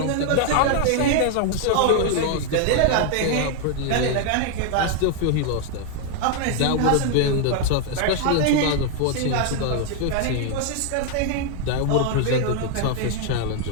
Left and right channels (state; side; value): different; both; correlation 0.00